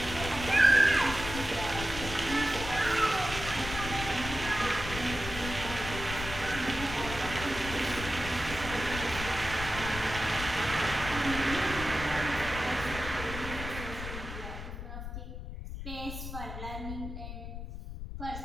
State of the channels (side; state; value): left; noise; rumble, 8 dB below the sound